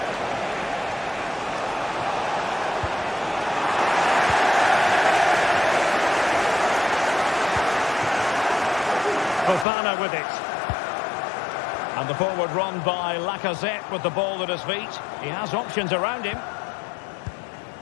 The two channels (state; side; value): drops out; right; at 9.7 s